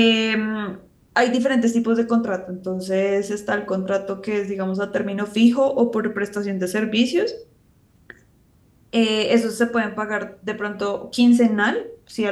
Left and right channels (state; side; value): identical; both; correlation 1.00